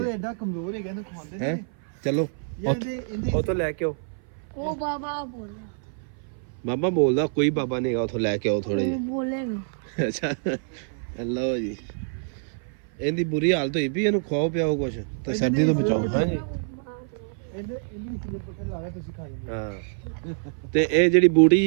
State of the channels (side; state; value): left; silent; 57 dB below the other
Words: ਐਡਾ ਕਮਜ਼ੋਰ ਹੈਗਾ ਇਹਨੂੰ ਖਵਾਉਂਦੇ ਹੈ ਨੇ। ਚਲੋ ਇਹਦੇ ਉਥੋਂ ਲੈ ਕੇ ਆਓ। ਉਹ ਬਾਬਾ ਬੋਲਦਾ। ਬਾਬਾ ਬੋਲਦਾ ਕੋਈ ਬਾਬਾ ਨਹੀਂ ਹੈਗਾ, ਉਥੋਂ ਲੈ ਕੇ ਆਓ ਥੋੜੇ ਜਿਹੇ। ਬੋਲੇਗਾ। ਅੱਛਾ ਲਓ ਜੀ, ਇਹਦੀ ਬੁਰੀ ਹਾਲਤ ਹੋਈ ਵੀ, ਇਹਨੂੰ ਖਵਾਓ ਪਿਆਓ ਕੁਛ ਤੇ ਸਰਦੀ ਤੋਂ ਬਚਾਓ। ਹਾਂਜੀ ਇਹਦੇ ਪੱਠੇ ਲਾ ਕੇ ਤੁਸੀਂ ਖਾ ਜਾਂਦੇ। ਹਾਂ ਤੇ ਇਹ ਜਿਹੜੀ ਬੂਟੀ